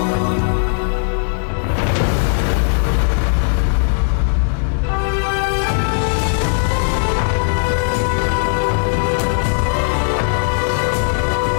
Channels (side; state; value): right; silent; digital silence